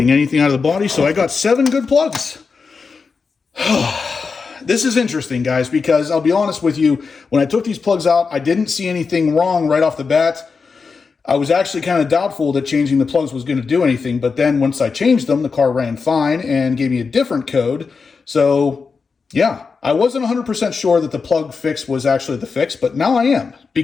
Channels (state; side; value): quieter; right; 5.0 dB